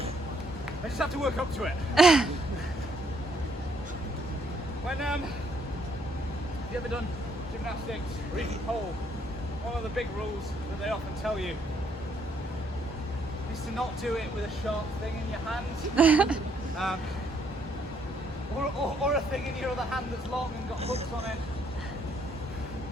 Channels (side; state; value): both; normal; correlation 0.69